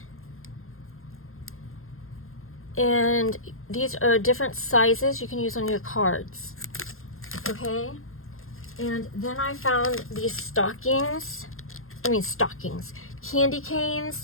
And these are different sizes you can use on your cards. Okay? And then I found these stockings. candy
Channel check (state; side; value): late; right; 0.61 ms